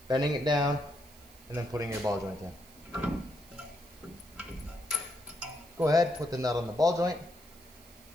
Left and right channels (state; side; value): noise; right; hiss, 24 dB below the sound